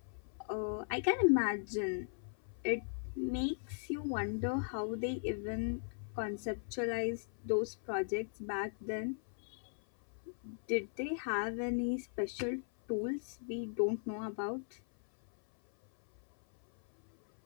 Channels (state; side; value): silent; right; 52 dB below the other